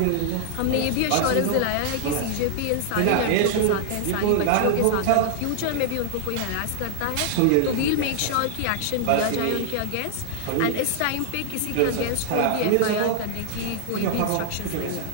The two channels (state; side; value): different; both; correlation 0.00